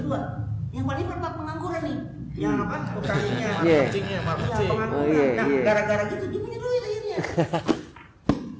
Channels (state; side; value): identical; both; correlation 1.00